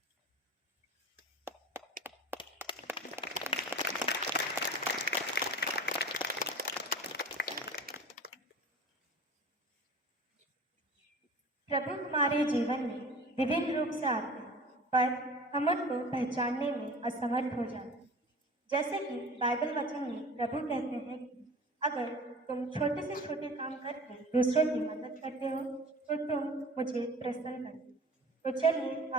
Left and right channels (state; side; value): normal; both; correlation 0.40